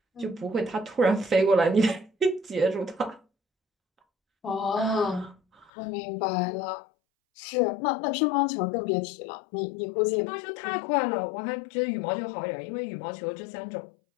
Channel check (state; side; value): drops out; right; at 5.7 s